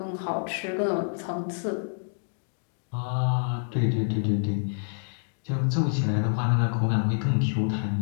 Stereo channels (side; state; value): right; silent; digital silence